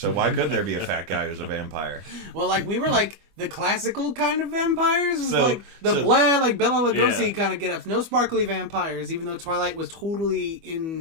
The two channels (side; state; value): left; late; 25 ms